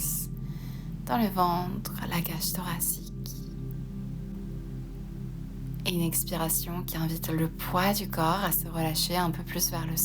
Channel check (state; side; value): identical; both; correlation 1.00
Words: dans le ventre, la cage thoracique. Et une expiration qui invite le poids du corps à se relâcher un peu plus vers le